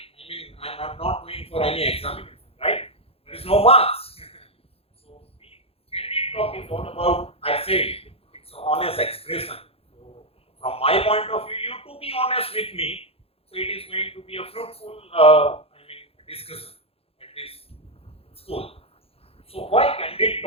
I mean, I'm not going for any examination, right? There is no marks. So, candid talk is all about, I say, it's an honest expression. So, from my point of view, you to be honest with me, so it is going to be a fruitful, discussion at this school. So, why candid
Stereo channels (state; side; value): late; right; 0.28 ms